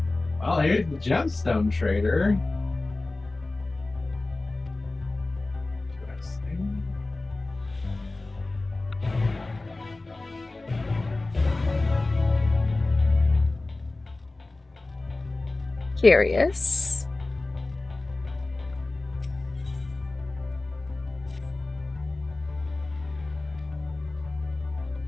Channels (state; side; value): quieter; right; 3.1 dB